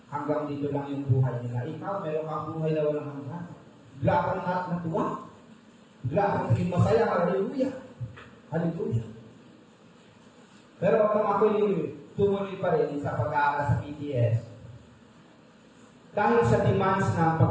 Hanggang dito lang yung buhay nila. Ikaw, meron kang buhay na walang hanggan. Bigla kang natuwa. Bigla kang naging masaya. Hallelujah. Hallelujah. Pero kung ako'y tumuloy pa rin sa pag-aaral sa PTS, dahil sa demands ng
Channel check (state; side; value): identical; both; correlation 1.00